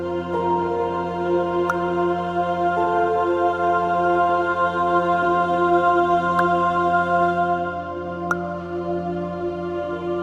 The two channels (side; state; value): both; identical; correlation 1.00